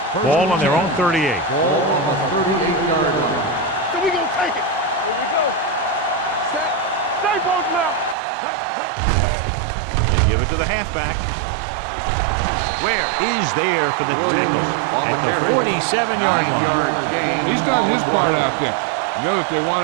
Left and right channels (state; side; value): drops out; left; at 8.2 s